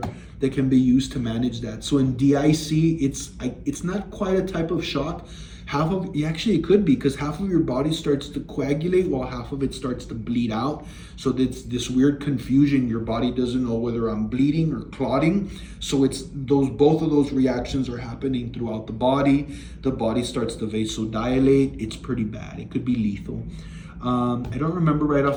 that can be used to manage that. So in DIC, it's not quite a type of shock. Actually it could be, because half of your body starts to coagulate while half of it starts to bleed out. So it's this weird confusion. Your body doesn't know whether I'm bleeding or clotting. So it's both of those reactions are happening throughout the body. The body starts to vasodilate. It's pretty bad. It could be lethal. I don't remember right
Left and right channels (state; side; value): identical; both; correlation 1.00